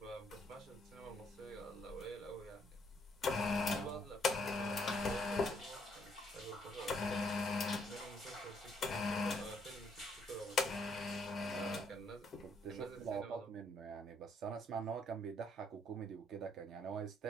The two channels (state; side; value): normal; both; correlation 0.70